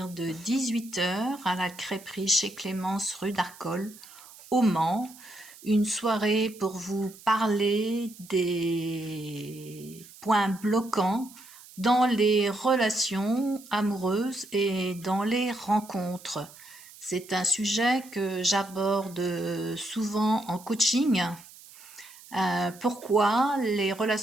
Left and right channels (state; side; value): noise; right; hiss, 20 dB below the sound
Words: de 18 h à la crêperie chez Clémence rue d'Arcole, au Mans. Une soirée pour vous parler des points bloquants dans les relations amoureuses et dans les rencontres. C'est un sujet que j'aborde souvent en coaching. Pourquoi les